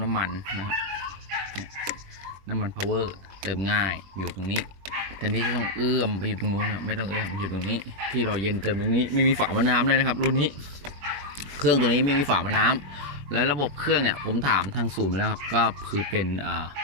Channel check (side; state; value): left; late; 21 ms